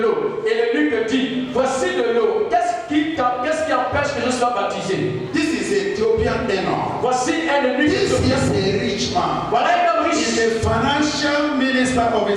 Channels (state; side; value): identical; both; correlation 1.00